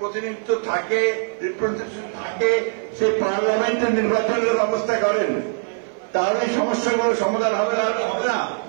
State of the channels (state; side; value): silent; left; 56 dB below the other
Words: থাকে, রিপ্রেজেন্টেশন থাকে, সেই পার্লামেন্টের নির্বাচনের ব্যবস্থা করেন, তাহলে সমস্যাগুলো সমাধান হবে না। হবে না